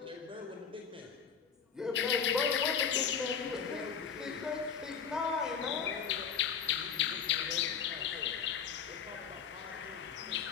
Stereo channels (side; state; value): right; quieter; 7.0 dB